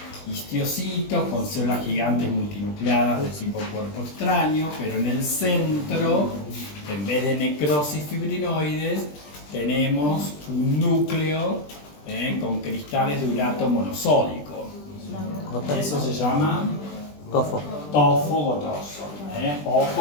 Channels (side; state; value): right; late; 20 ms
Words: histiocitos con células gigantes multinucleadas de tipo cuerpo extraño, pero en el centro, en vez de necrosis fibrinoides, tenemos un núcleo con cristales de urato monosódico. Eso se llama tofo gotoso.